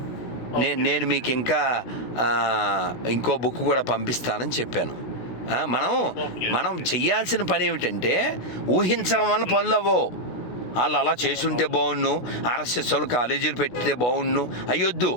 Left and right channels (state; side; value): late; right; 16 ms